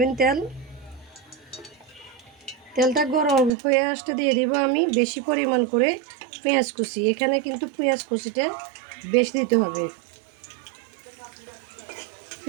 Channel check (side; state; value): left; drops out; at 3.5 s